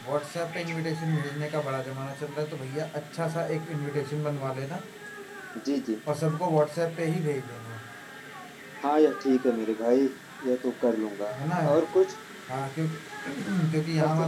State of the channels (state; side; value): identical; both; correlation 1.00